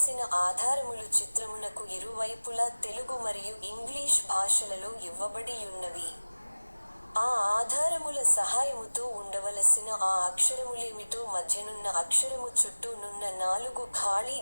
ఆధారములు చిత్రమునకు ఇరువైపులా తెలుగు మరియు ఇంగ్లీష్ భాషలలో ఇవ్వబడియున్నవి. ఆ ఆధారముల సహాయముతో ఉండవలసిన ఆ అక్షరములేమిటో మధ్యనున్న అక్షరము చుట్టూ నున్న 4 ఖాళీ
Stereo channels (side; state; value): both; inverted; correlation -1.00